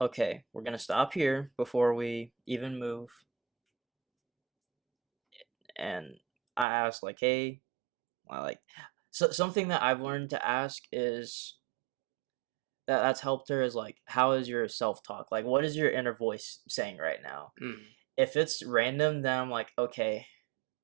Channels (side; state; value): left; drops out; at 6.7 s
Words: okay, we're gonna stop here before we even move. And I asked like, hey, I like so something that I've learned to ask is that's helped her is like, how is your self talk? Like, what is your inner voice saying right now? Mm. If it's random, then I'm like, okay,